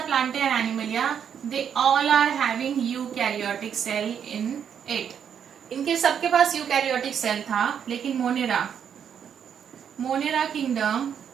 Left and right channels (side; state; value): left; quieter; 8.1 dB